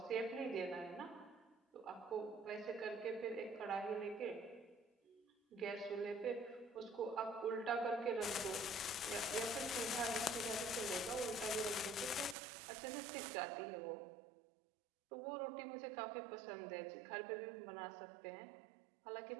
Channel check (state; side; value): drops out; left; at 12.4 s